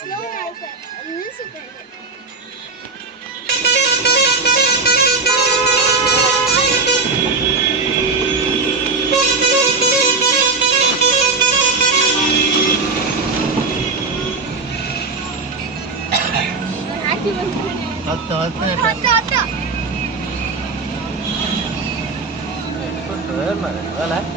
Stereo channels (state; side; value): quieter; left; 4.0 dB